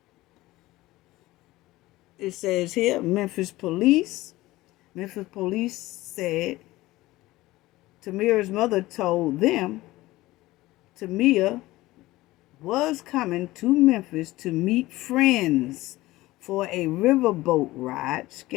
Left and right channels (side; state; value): right; quieter; 18.2 dB